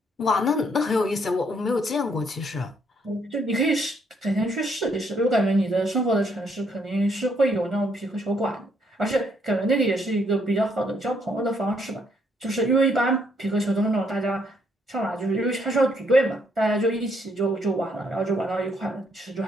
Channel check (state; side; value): normal; both; correlation 0.71